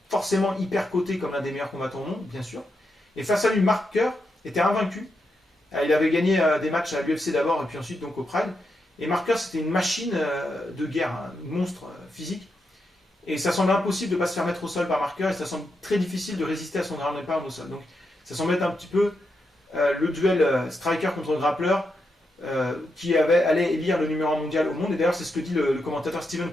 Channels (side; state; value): both; normal; correlation 0.84